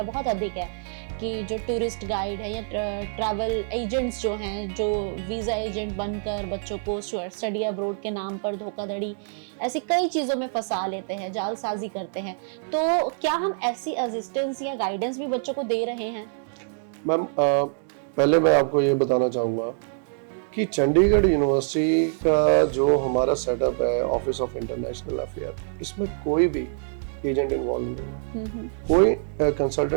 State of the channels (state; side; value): silent; left; digital silence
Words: बहुत अधिक है कि जो टूरिस्ट गाइड है या ट्रैवल एजेंट्स जो हैं, जो वीज़ा एजेंट बनकर बच्चों को स्टडी अब्रोड के नाम पर धोखाधड़ी ऐसी कई चीज़ों में फंसा लेते हैं, जालसाजी करते हैं, तो क्या हम ऐसी असिस्टेंस या गाइडेंस भी बच्चों को दे रहे हैं? मैम पहले मैं आपको ये बताना चाहूँगा कि चंडीगढ़ यूनिवर्सिटी का जो हमारा सेटअप है ऑफिस ऑफ इंटरनेशनल अफेयर, इसमें कोई भी एजेंट इन्वॉल्व नहीं है, कोई